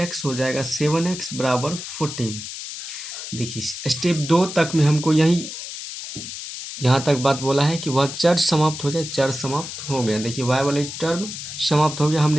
हो जाएगा 7x = 14। देखिए स्टेप 2 तक में हमको यहाँ तक बात बोला है कि वह चर समाप्त हो जाए। चर समाप्त हो गया। देखिए y वाले टर्म समाप्त हो गया,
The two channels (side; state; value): left; noise; hiss, 9 dB below the sound